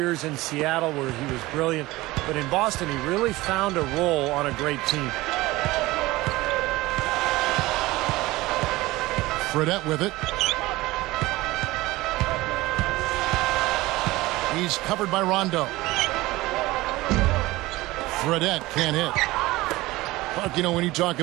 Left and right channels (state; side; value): quieter; left; 19.2 dB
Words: in Seattle where he was brilliant. But in Boston, he really found a role on a great team. Fredette with it. He's covered by Rondo. Fredette can't hit. Clark, you know, when you talk